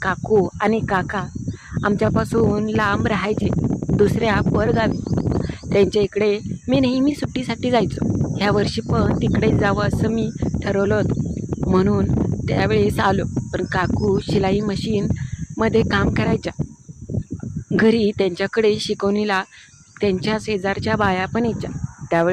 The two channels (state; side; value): identical; both; correlation 1.00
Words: काकू आणि काका आमच्यापासून लांब राहायचे, दुसऱ्या परगावी. त्यांच्या इकडे मी नेहमी सुट्टीसाठी जायचो. ह्या वर्षी पण तिकडे जावं असं मी ठरवलं होतं, म्हणून त्यावेळेस आलो. पण काकू शिलाई मशीनमध्ये काम करायच्या. घरी त्यांच्याकडे शिकवणीला त्यांच्या शेजारच्या बाया पण यायच्या.